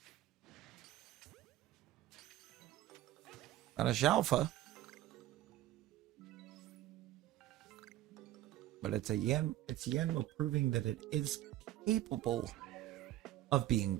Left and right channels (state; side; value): quieter; left; 14.0 dB